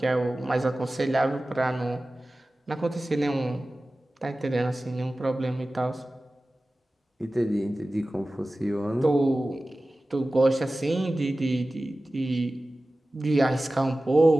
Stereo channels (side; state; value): both; normal; correlation 0.96